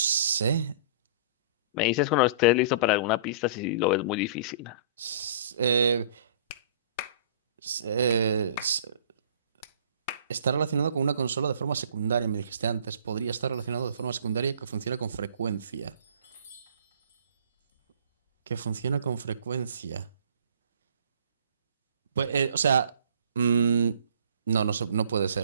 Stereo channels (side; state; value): both; inverted; correlation -0.47